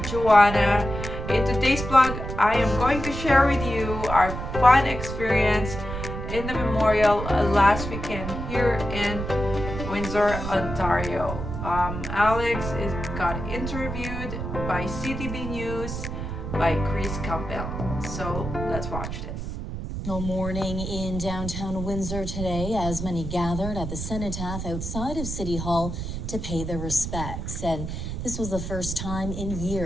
Joanna. In today's vlog, I am going to share with you our fun experience in the memorial last weekend here in Windsor, Ontario. Alex got interviewed by CTV News by Campbell. So let's watch this. No morning in downtown Windsor today as many gathered at the cenotaph outside of City Hall to pay their respects. And this was the first time in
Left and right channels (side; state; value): right; noise; rumble, 6 dB below the sound